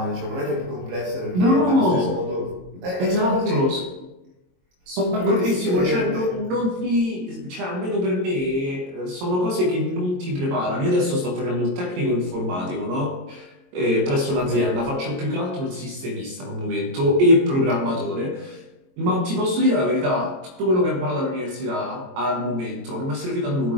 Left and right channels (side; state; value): left; late; 22 ms